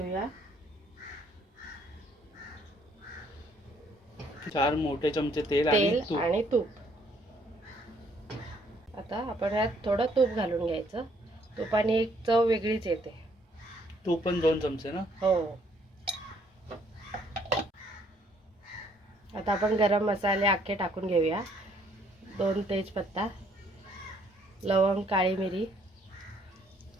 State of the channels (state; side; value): normal; both; correlation 0.65